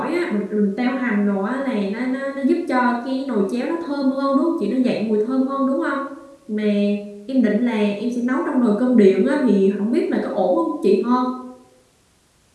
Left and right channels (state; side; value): identical; both; correlation 1.00